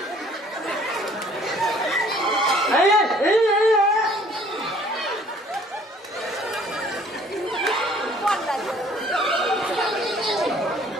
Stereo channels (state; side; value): normal; both; correlation 0.56